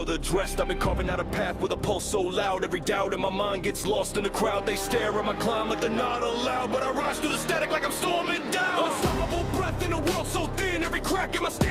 addressed. I've been carving out a path with a pulse so loud, every doubt in my mind gets lost in the crowd. They stare at my climb like they're not allowed, but I rise through the static like I'm storming down. Unstoppable breath in a world so thin, every crack in my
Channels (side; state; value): both; identical; correlation 1.00